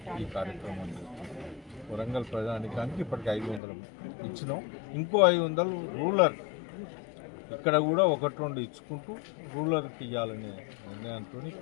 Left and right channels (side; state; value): right; drops out; at 3.6 s